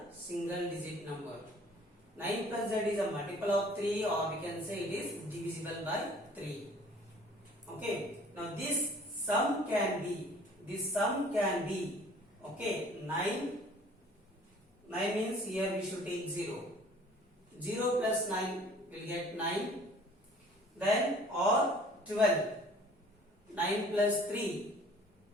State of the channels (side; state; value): both; normal; correlation 0.52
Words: single digit number. 9 plus z is a multiple of 3, or we can say it is divisible by 3. Okay. Now this sum can be, okay, 9 means here we should take 0. 0 plus 9 will get 9. Then or 12. 9 plus 3.